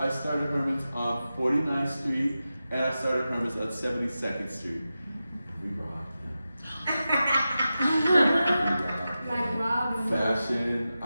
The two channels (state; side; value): inverted; both; correlation -0.92